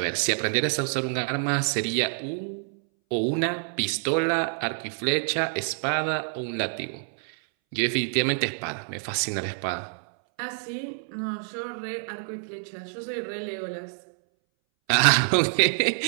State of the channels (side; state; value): left; silent; 60 dB below the other